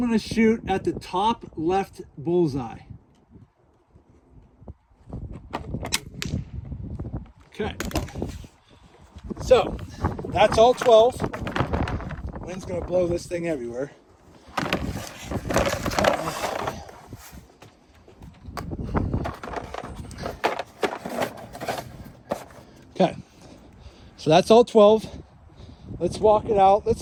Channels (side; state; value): both; identical; correlation 1.00